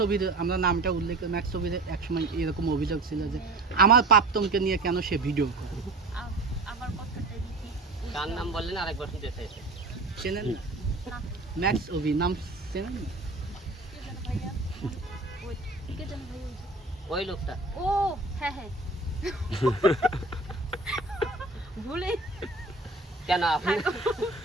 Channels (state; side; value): quieter; left; 3.0 dB